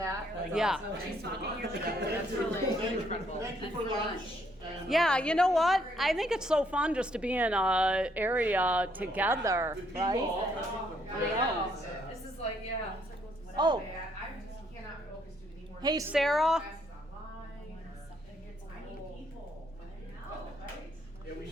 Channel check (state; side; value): normal; both; correlation 0.70